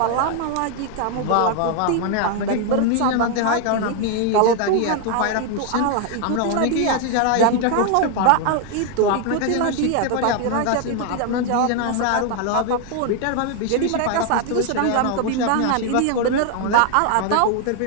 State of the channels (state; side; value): different; both; correlation 0.00